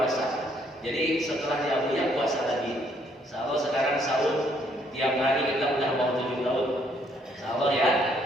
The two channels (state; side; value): normal; both; correlation 0.68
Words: Jadi setelah di Abu Ya puasa lagi. Insyaallah sekarang sahur tiap hari kita udah mau 7 tahun. Insyaallah ya.